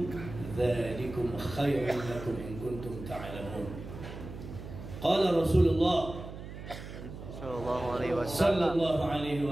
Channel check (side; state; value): right; noise; hum, 11 dB below the sound